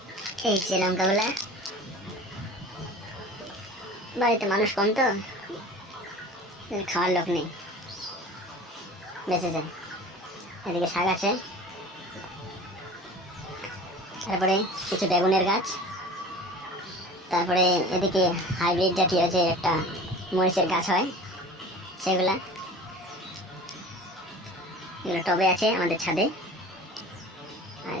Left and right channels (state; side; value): normal; both; correlation 0.40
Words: এই যে লঙ্কাগুলা। বাড়িতে মানুষ কম তো খাওয়ার লোক নেই, বেঁচে যায়। এদিকে শাক আছে, তারপরে কিছু বেগুনের গাছ, তারপরে এদিকে হাইব্রিড জাতীয় যে একটা মরিচের গাছ হয় সেগুলা, এগুলো টবে আছে আমাদের ছাদে। আর